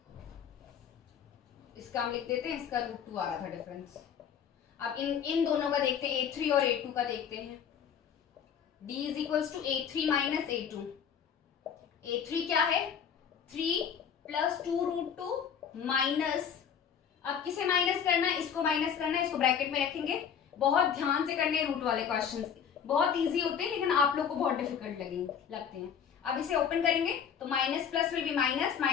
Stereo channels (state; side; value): quieter; right; 7.8 dB